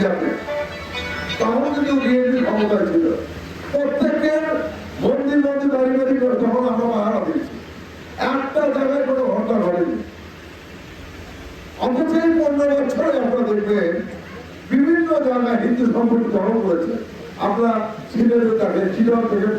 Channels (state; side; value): identical; both; correlation 1.00